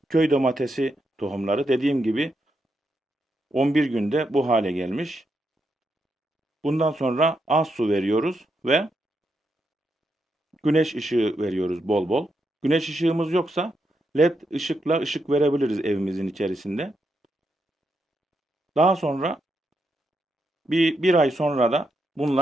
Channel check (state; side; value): normal; both; correlation 0.82